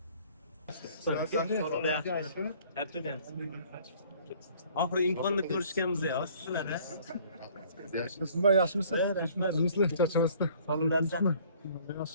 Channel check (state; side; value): inverted; both; correlation -0.56